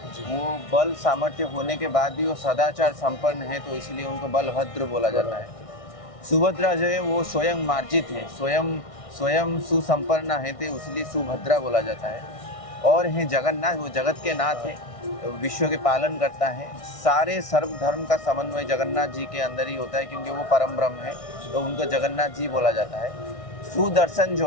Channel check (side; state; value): right; late; 1.6 ms